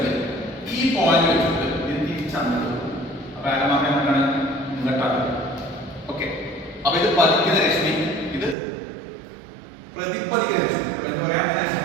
ഈ പോയിന്റ് വെച്ചിട്ട് ഇത് തിരിച്ചാണ്. അപ്പൊ ആരമാക്കാൻ എന്താണ് ഇങ്ങോട്ടാണ്. ഓക്കെ, അപ്പൊ ഇത് പതിക്കുന്ന രശ്മി, ഇത് പ്രതിപതിക്കുന്ന രശ്മി. എന്ന് പറയാം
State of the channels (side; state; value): left; drops out; at 8.6 s